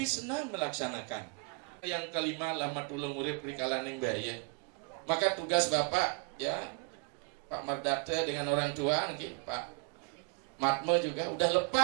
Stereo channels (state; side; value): quieter; left; 33.0 dB